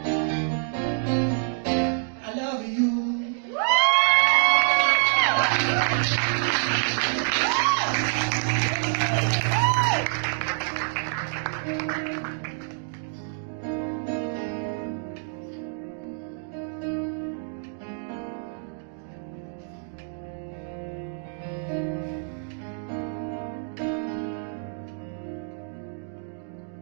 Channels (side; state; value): left; silent; 60 dB below the other